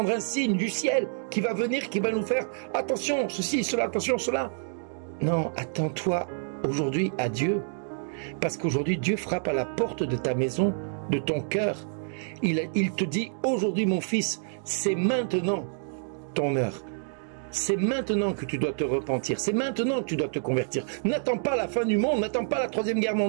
un signe du ciel qui va venir, qui va nous faire attention, ceci, cela, attention, cela? Non, attends-toi aujourd'hui à Dieu. Parce qu'aujourd'hui, Dieu frappe à la porte de ta maison, de ton cœur. Il te dit, aujourd'hui mon fils, c'est maintenant ton heure. C'est maintenant que tu dois te repentir. C'est maintenant que tu dois te convertir. N'attends pas la fin du monde, n'attends pas la 3e guerre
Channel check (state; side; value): silent; left; 60 dB below the other